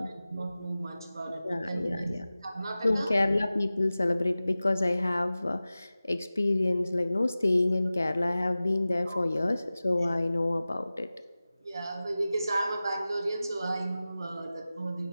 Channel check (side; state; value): both; inverted; correlation -0.96